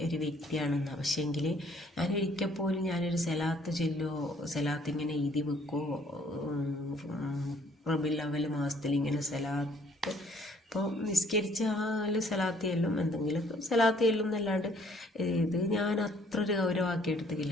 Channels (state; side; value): normal; both; correlation 0.62